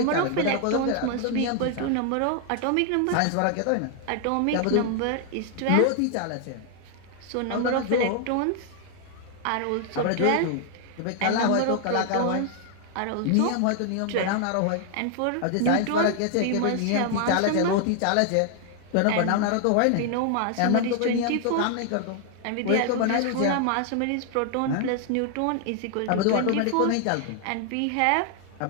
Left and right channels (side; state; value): both; different; correlation 0.00